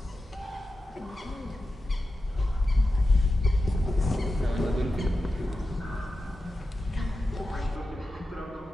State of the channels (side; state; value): both; normal; correlation 0.92